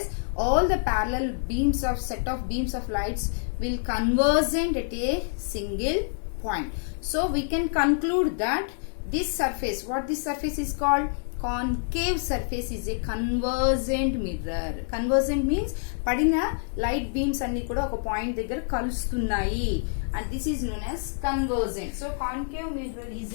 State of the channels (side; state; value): right; silent; digital silence